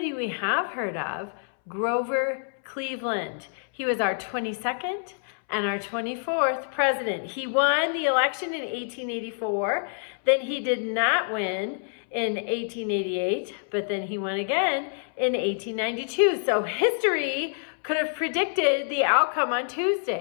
we have heard of, Grover Cleveland. He was our 22nd and our 24th president. He won the election in 1884. Then he did not win in 1888, but then he won again in 1892. So history could have predicted the outcome on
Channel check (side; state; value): right; silent; 60 dB below the other